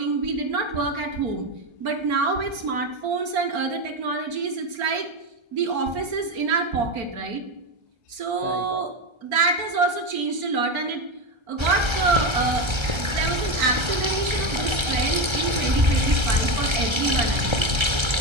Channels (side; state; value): left; late; 1.3 ms